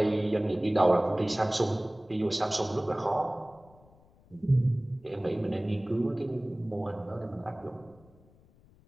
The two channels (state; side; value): noise; left; rumble, 28 dB below the sound